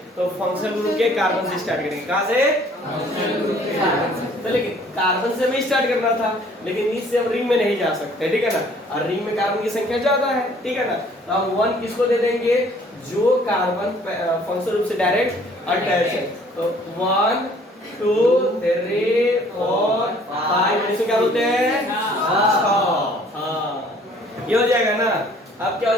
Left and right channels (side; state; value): both; normal; correlation 0.57